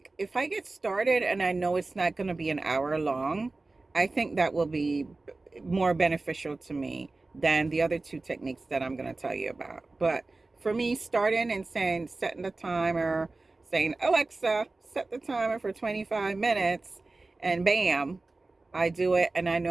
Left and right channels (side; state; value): left; quieter; 3.3 dB